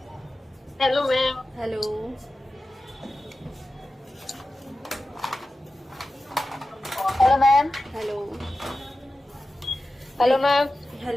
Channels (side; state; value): both; normal; correlation 0.94